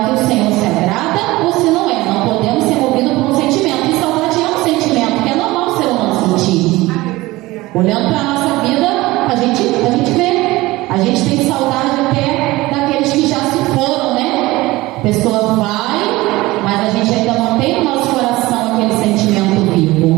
que o Senhor se agrada ou se não é. Não podemos ser movidos por um sentimento. E saudade é um sentimento que é normal o ser humano sentir. Olhando para a nossa vida, a gente vê. A gente tem saudade até daqueles que já se foram, né? A pessoa vai, mas a gente ainda mantém no nosso coração aquele sentimento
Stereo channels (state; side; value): quieter; left; 19.5 dB